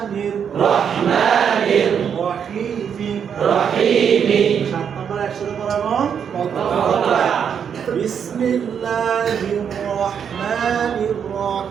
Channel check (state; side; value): quieter; left; 7.7 dB